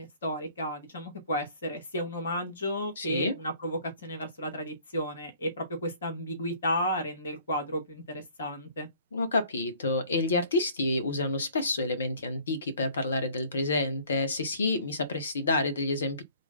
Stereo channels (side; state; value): both; inverted; correlation -0.55